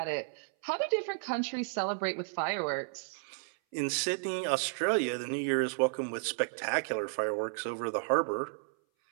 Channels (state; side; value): silent; left; 56 dB below the other